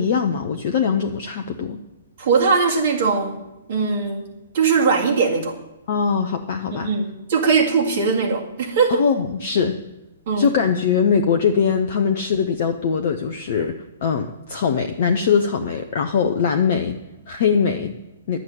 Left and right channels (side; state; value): both; inverted; correlation -0.48